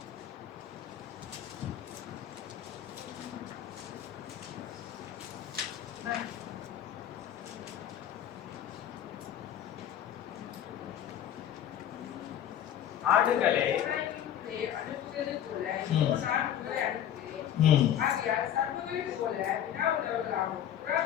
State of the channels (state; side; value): quieter; right; 10.4 dB